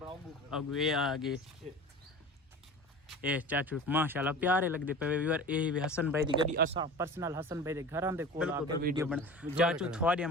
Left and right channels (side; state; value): both; normal; correlation 0.36